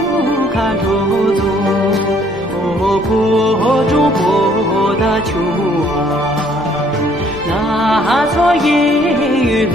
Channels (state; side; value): noise; left; rumble, 20 dB below the sound